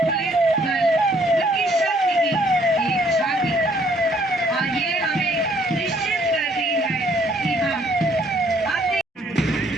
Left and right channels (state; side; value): normal; both; correlation 0.64